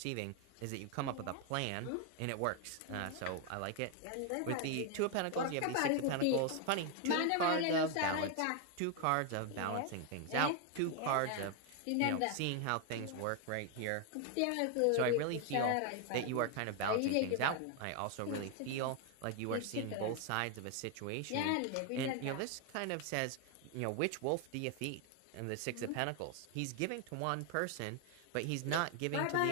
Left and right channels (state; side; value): different; both; correlation 0.01